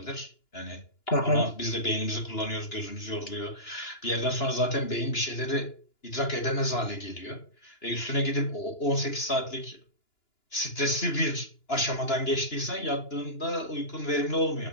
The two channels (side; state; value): right; late; 2.9 ms